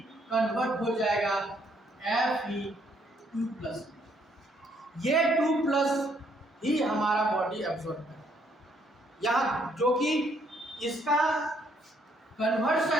कन्वर्ट हो जाएगा Fe2+। ये 2+ ही हमारा बॉडी एब्जॉर्ब करे, यहाँ जो कि इसका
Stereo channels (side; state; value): both; normal; correlation 0.69